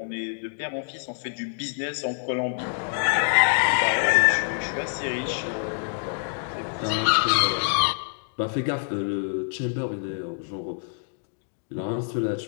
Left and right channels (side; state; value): right; silent; digital silence